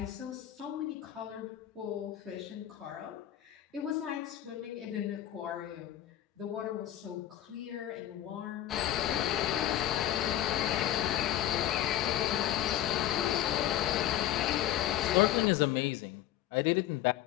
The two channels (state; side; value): quieter; right; 12.5 dB